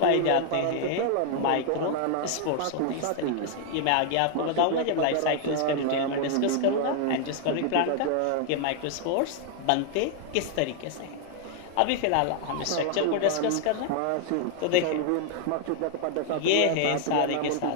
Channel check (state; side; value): different; both; correlation 0.00